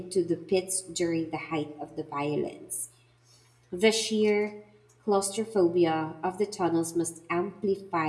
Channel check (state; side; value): identical; both; correlation 1.00